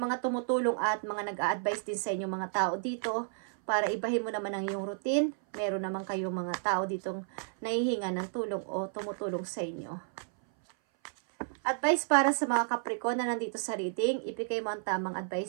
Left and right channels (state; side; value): silent; left; 57 dB below the other